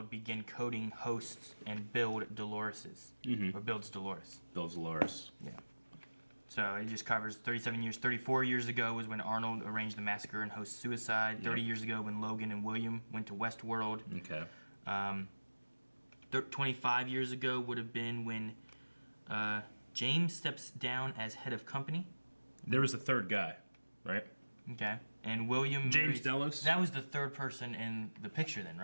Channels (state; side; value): inverted; both; correlation -1.00